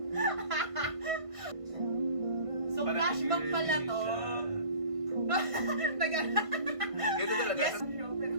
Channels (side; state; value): left; late; 1.5 ms